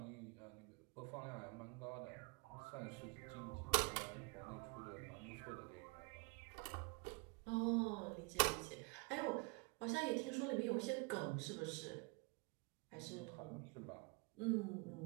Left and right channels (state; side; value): quieter; left; 29.8 dB